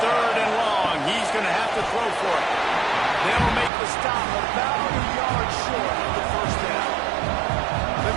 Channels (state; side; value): drops out; left; at 3.7 s